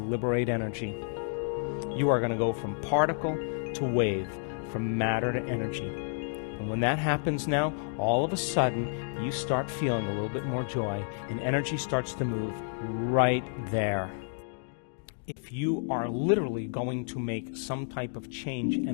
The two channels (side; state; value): right; silent; digital silence